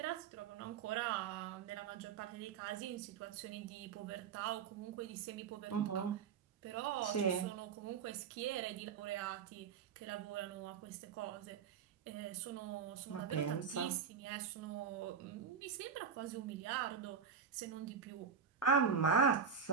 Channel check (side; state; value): left; quieter; 6.6 dB